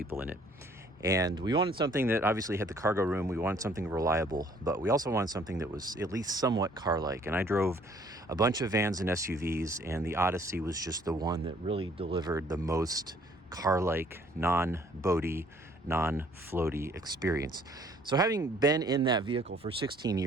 in it. And we wanted something that obviously had the cargo room. We wanted something reliable, but we also wanted something that was at least somewhat car-like. And I drove a bunch of vans and SUVs, and the Odyssey was just the one that really delivered the most car-like, non-boaty, non-floaty experience. So having been in that vehicle for 16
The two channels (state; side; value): normal; both; correlation 0.59